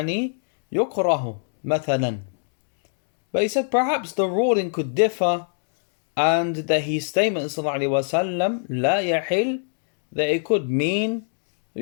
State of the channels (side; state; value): right; silent; digital silence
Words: يكره مثلا. But he said perhaps the ruling could differ, and that his statement صلى الله عليه وسلم لا يحل, that it could mean